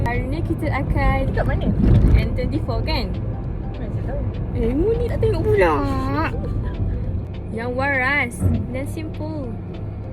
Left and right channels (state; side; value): identical; both; correlation 1.00